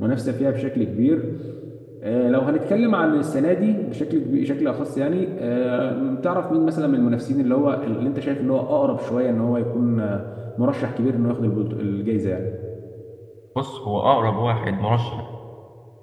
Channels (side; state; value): both; identical; correlation 1.00